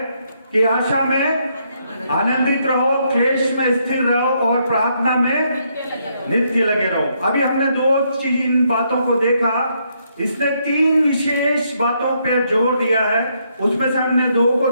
कि आशा में आनंदित रहो, क्लेश में स्थिर रहो और प्रार्थना में नित्य लगे रहो। अभी हमने दो इन बातों को देखा, इसने तीन विशेष बातों पर जोर दिया है। उसमें से हमने दो को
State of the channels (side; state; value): both; inverted; correlation -0.75